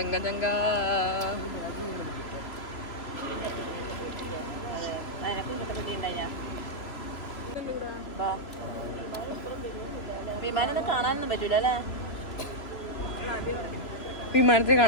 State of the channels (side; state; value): right; late; 3.0 ms